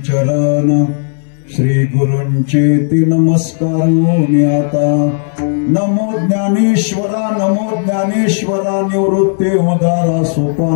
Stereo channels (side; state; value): right; silent; digital silence